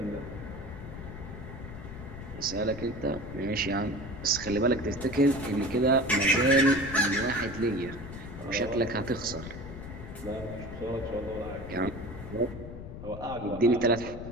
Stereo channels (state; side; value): noise; left; rumble, 11 dB below the sound